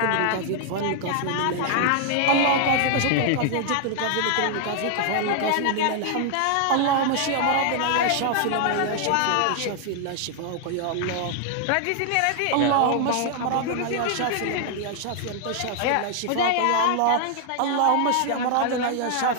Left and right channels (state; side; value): different; both; correlation 0.00